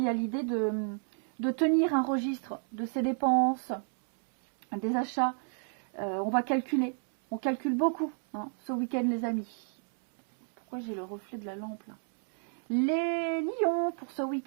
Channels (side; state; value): left; silent; 56 dB below the other